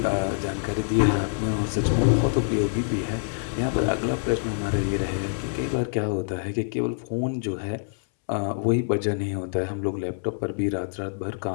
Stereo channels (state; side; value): silent; right; 61 dB below the other